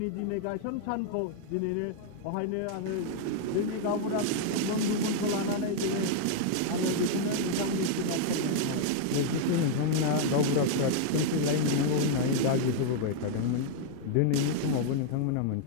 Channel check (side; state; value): both; different; correlation 0.00